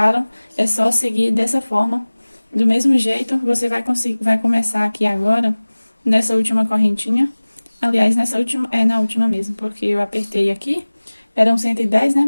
é só seguir dessa forma. Do mesmo jeito, você vai começar aqui agora, nessa última correntinha. Aliás, na última mesmo, porque eu apertei aqui. Eram 110, né?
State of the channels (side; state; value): both; inverted; correlation -1.00